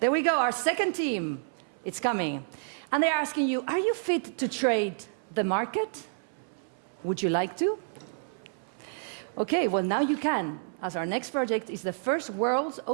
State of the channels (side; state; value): left; silent; 58 dB below the other